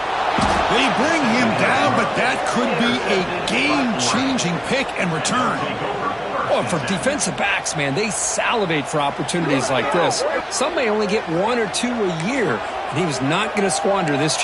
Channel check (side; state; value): both; identical; correlation 1.00